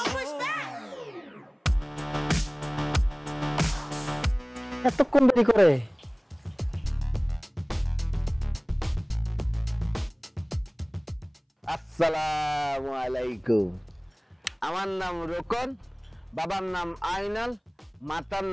push back. এতক্ষণ দেরি করে আসসালামু আলাইকুম। আমার নাম রোকন, বাবার নাম আইনাল, মাতার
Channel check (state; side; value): identical; both; correlation 1.00